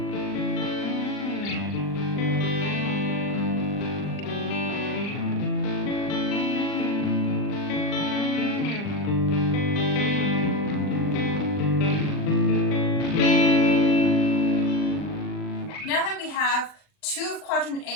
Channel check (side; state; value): right; late; 39 ms